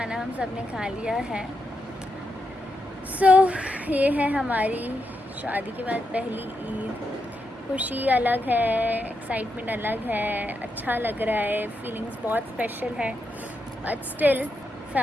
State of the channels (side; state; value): both; normal; correlation 0.84